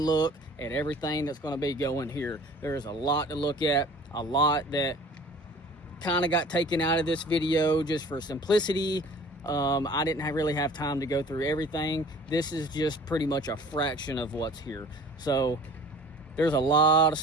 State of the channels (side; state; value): both; normal; correlation 0.47